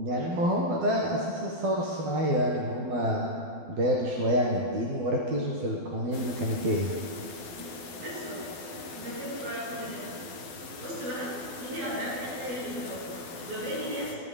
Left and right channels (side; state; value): left; late; 12 ms